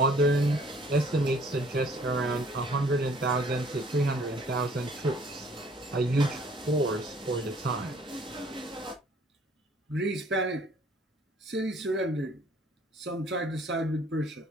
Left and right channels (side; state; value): both; normal; correlation 0.58